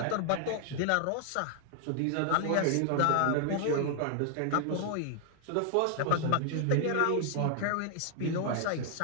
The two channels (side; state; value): both; different; correlation 0.00